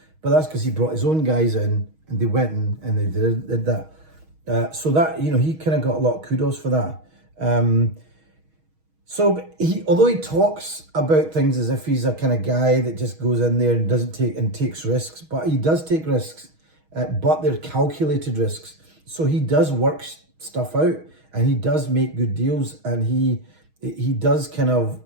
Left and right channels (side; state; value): left; late; 6.3 ms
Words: But that's because he brought his own guys in and they went in and they did that. So that, he kind of got a lot of kudos for that. So although he talks about things as if he's a kind of guy that just goes in there and takes risks, but he does take risks, but they're calculated risks. So he does work stuff out and he does make good deals, and he does kind of